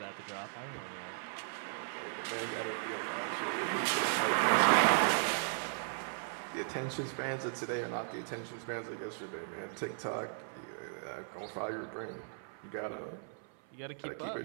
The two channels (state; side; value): silent; left; 53 dB below the other